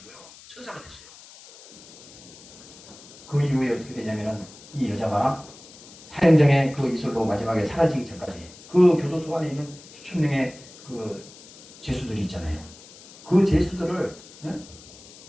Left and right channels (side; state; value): left; noise; hiss, 20 dB below the sound